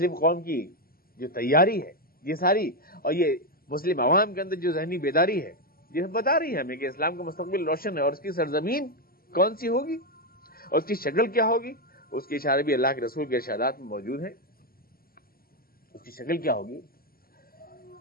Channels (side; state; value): right; late; 0.43 ms